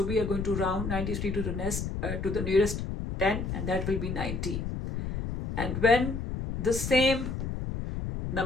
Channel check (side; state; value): left; noise; rumble, 4 dB below the sound